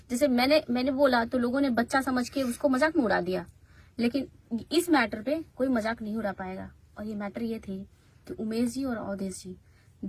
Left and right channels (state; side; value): identical; both; correlation 1.00